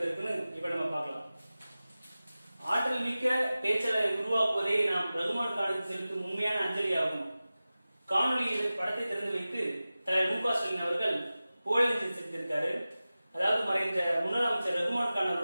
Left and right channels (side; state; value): both; inverted; correlation -0.96